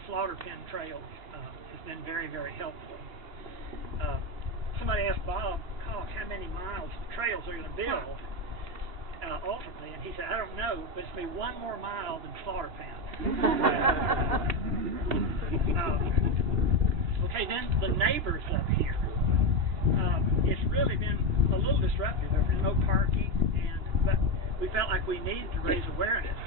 Slaughter Pen Trails has been very, very helpful. Somebody asked Bob Koch how many miles of trails they're going to build ultimately, and he said, I don't know, but it's going to be one more mile than Slaughter Pen. Okay, then the neighbors up here. It's really been a little disruptive. There's been no parking, but we felt like we needed to raise awareness.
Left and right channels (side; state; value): left; late; 2.8 ms